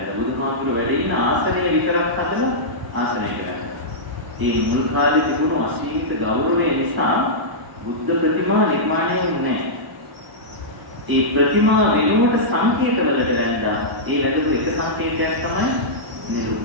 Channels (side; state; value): left; late; 1.0 ms